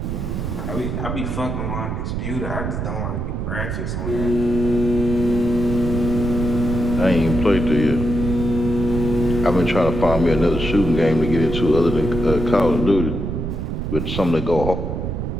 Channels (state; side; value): noise; right; rumble, 3 dB below the sound